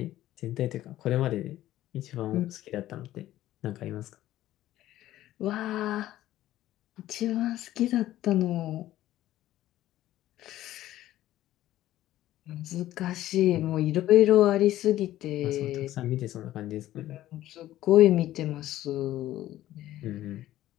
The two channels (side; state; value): right; quieter; 14.1 dB